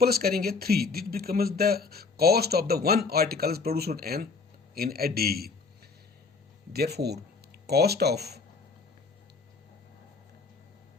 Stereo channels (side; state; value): right; quieter; 4.5 dB